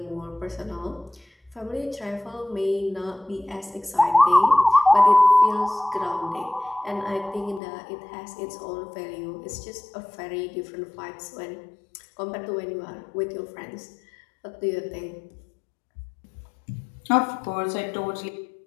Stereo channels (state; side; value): drops out; right; at 7.6 s